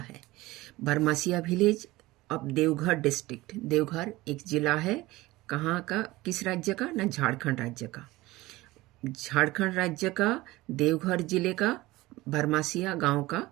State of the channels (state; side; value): quieter; left; 19.2 dB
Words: Barmasia village of Deoghar district, Deoghar एक जिला है, कहाँ का, किस राज्य का ना, झारखंड राज्य का। झारखंड राज्य का देवघर जिले का बरमासिया गांव का